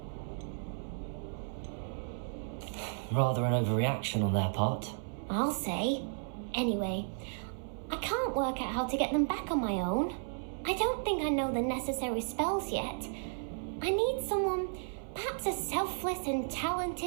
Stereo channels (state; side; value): silent; left; 55 dB below the other